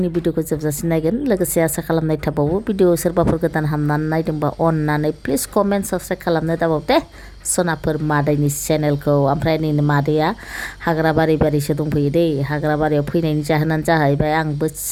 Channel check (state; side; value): identical; both; correlation 1.00